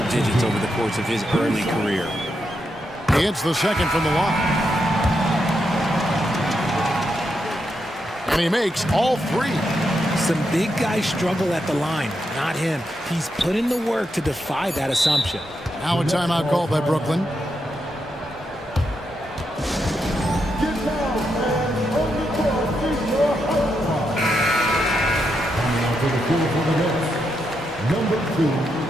digits over the course of his early career. He hits the second from the line. And he makes all 3. Some big guys struggle at the line, not him. He's put in the work to defy that assumption. Now a timeout called by Brooklyn.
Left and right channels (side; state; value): both; normal; correlation 0.83